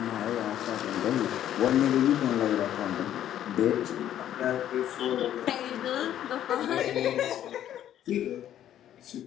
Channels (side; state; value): right; quieter; 11.2 dB